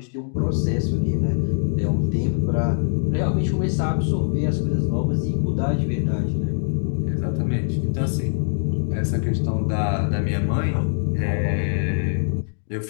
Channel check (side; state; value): right; silent; digital silence